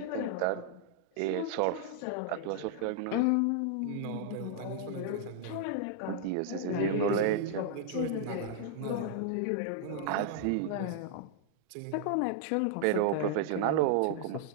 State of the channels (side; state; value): both; different; correlation -0.01